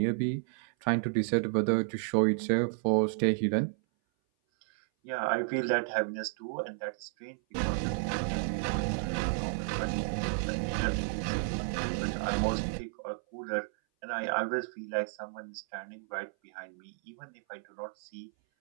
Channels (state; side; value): silent; left; 56 dB below the other